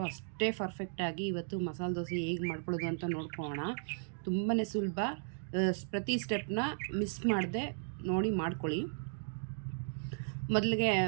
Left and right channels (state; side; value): silent; left; digital silence